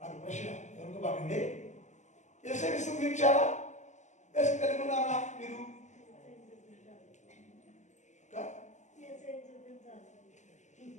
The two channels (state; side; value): late; right; 0.34 ms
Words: ప్రశ్న, ఎవరికి బాగండి? యేసుని విసర్జించారా? యేసు కలిగి ఉన్నారా మీరు?